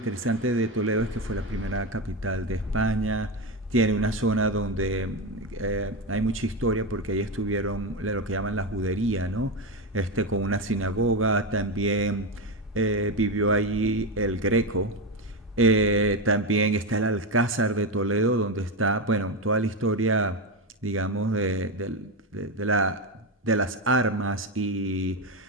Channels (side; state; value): both; normal; correlation 0.12